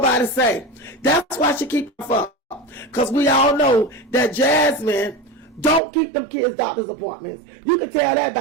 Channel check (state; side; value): drops out; left; at 5.8 s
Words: say. That's why she keep up. Because we all know that Jasmine don't keep them kids' doctor's appointments. You can tell that